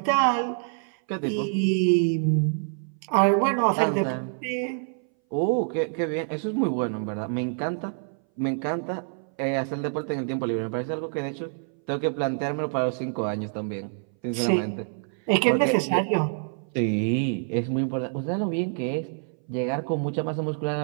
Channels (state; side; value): silent; left; 59 dB below the other